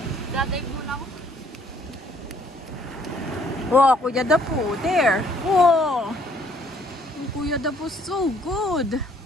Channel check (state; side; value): normal; both; correlation 0.63